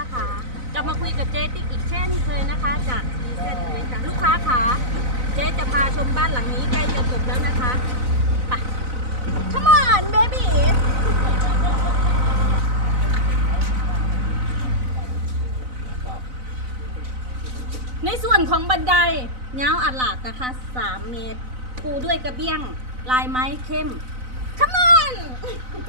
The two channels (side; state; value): left; late; 4.0 ms